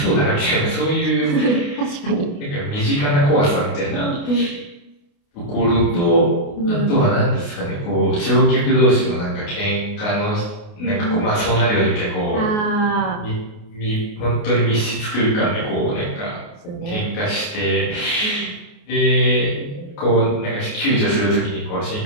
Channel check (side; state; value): right; late; 28 ms